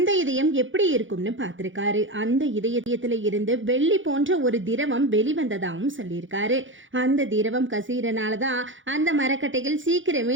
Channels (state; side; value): late; left; 0.56 ms